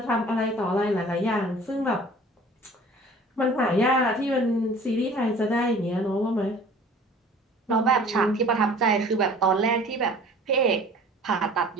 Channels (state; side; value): normal; both; correlation 0.47